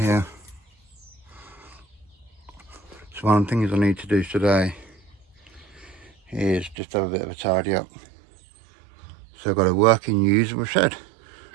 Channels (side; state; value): left; drops out; at 6.8 s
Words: So one of the things I need to do today is just have a bit of a tidy up. So I've got a working usable shed,